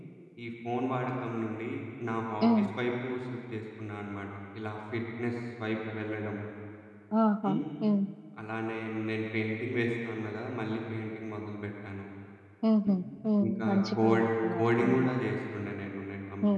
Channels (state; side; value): identical; both; correlation 1.00